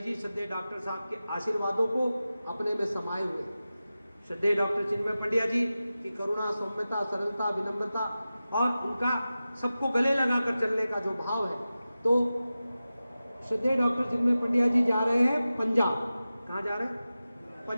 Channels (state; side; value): inverted; both; correlation -0.94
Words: श्रद्धेय डॉक्टर साहब के आशीर्वादों को अपने में समाये हुए। श्रद्धेय डॉक्टर चिन्मय पंड्या जी की करुणा, सौम्यता, सरलता, विनम्रता और उनका सबको गले लगाकर चलने का जो भाव है। तो श्रद्धेय डॉक्टर चिन्मय पंड्या जी जा रहे हैं पंजाब। कहाँ जा रहे हैं?